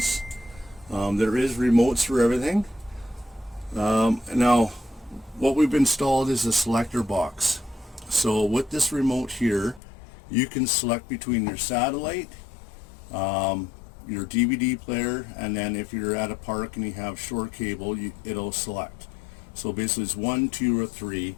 There is remotes for everything. Now, what we've installed is a selector box. So with this remote here, you can select between your satellite, your DVD player, and then if you're at a park and you have short cable, it'll select. So basically it's 1, 2, or 3,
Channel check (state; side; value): drops out; right; at 9.8 s